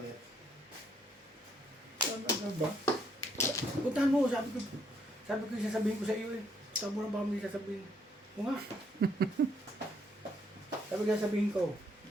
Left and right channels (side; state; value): both; normal; correlation 0.70